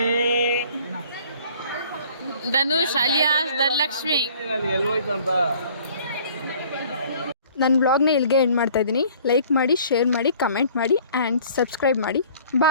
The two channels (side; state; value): both; inverted; correlation -0.53